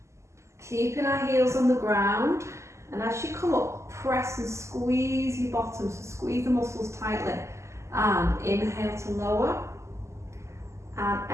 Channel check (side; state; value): left; late; 0.13 ms